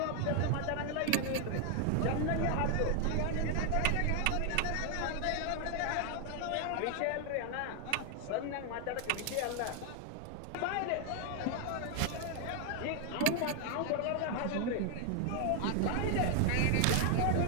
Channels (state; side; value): different; both; correlation 0.01